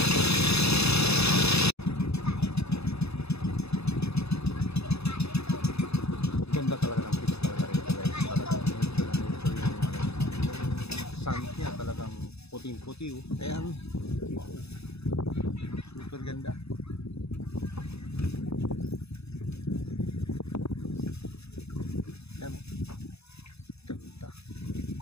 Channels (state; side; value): late; right; 0.79 ms